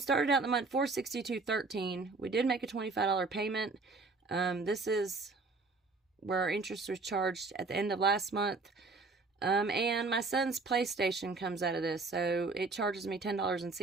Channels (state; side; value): quieter; left; 3.8 dB